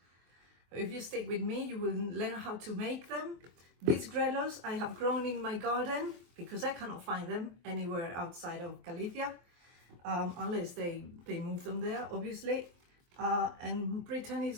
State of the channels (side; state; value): left; late; 23 ms